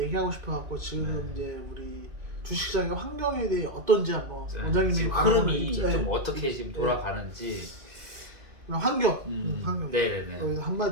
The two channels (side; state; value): left; late; 2.2 ms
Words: 싶어갖고 지금 이제 우리 주식시장의 환경에 대해 어떤지 한번 원장님이 지금 흐름이 좀 어떻게 지금 돌아가는지. 환경. 환경. 네네네. 여기서